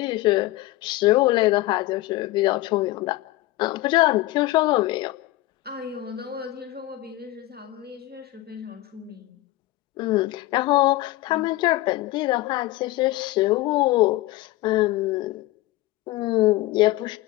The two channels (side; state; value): right; quieter; 17.5 dB